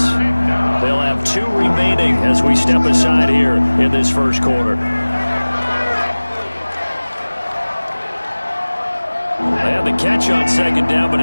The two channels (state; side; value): inverted; both; correlation -1.00